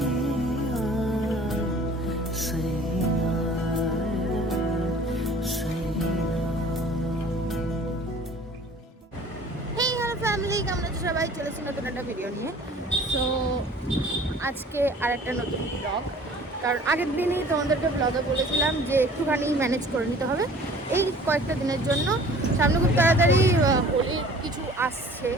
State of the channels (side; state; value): both; normal; correlation 0.49